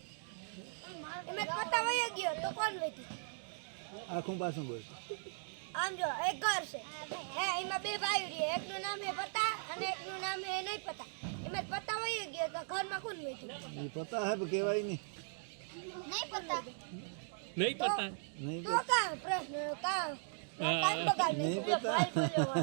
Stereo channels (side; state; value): left; silent; digital silence